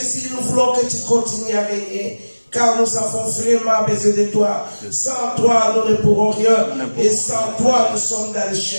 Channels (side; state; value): both; inverted; correlation -1.00